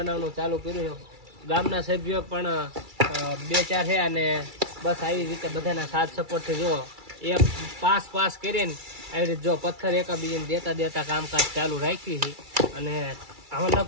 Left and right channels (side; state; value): left; late; 2.3 ms